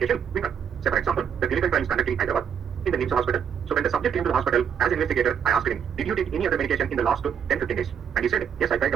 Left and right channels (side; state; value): left; quieter; 7.8 dB